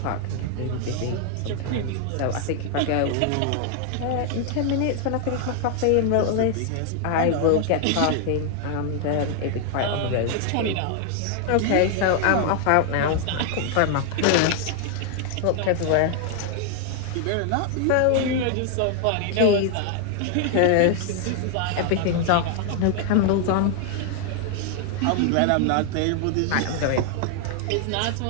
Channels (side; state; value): both; different; correlation 0.00